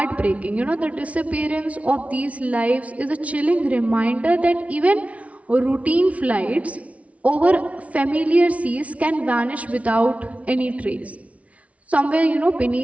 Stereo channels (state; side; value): late; left; 0.065 ms